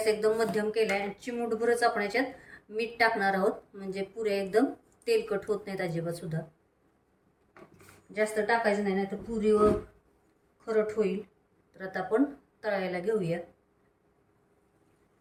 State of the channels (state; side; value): identical; both; correlation 1.00